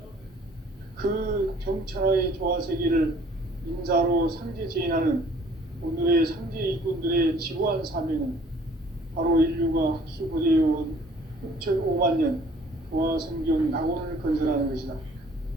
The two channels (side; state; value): both; normal; correlation 0.56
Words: 그 정천하의 조화세계를 인사로 상제 제인하는 오늘의 상제 일꾼들의 지구한 사명은 바로 인류가 학수고대해온 6,5만 년 조화성경 낙원을 건설하는 것이다.